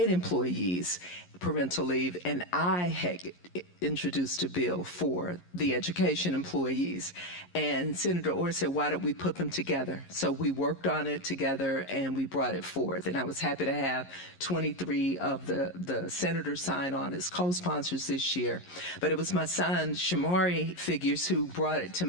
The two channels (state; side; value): late; right; 11 ms